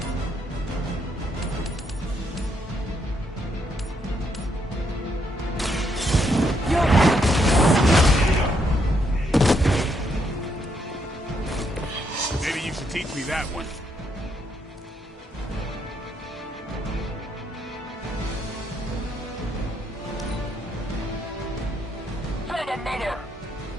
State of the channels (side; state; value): both; normal; correlation 0.75